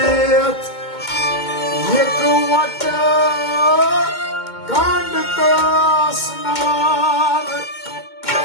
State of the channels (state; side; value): late; right; 2.2 ms